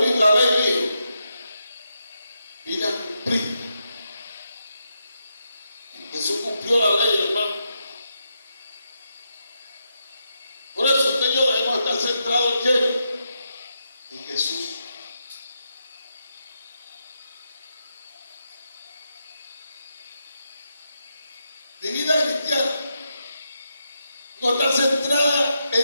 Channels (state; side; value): inverted; both; correlation -0.83